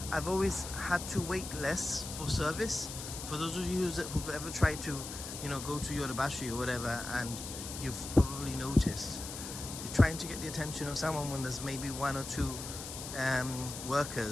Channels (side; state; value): left; noise; hiss, 8 dB below the sound